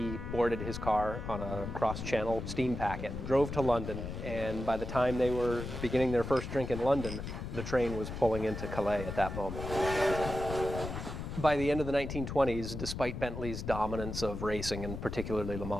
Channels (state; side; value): noise; left; rumble, 6 dB below the sound